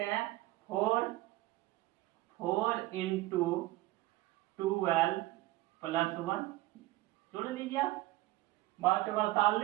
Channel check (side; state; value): left; quieter; 18.3 dB